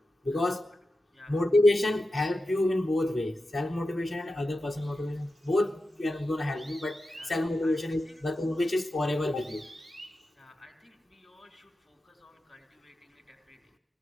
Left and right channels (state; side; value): normal; both; correlation 0.91